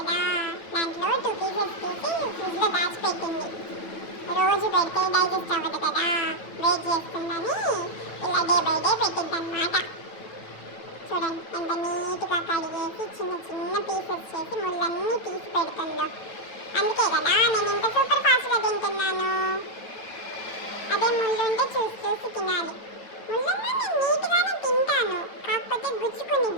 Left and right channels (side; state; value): right; late; 9.1 ms